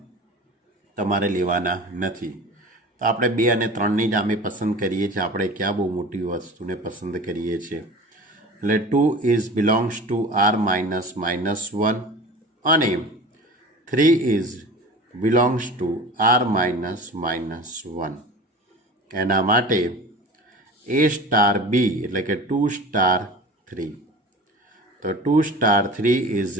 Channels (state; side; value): normal; both; correlation 0.37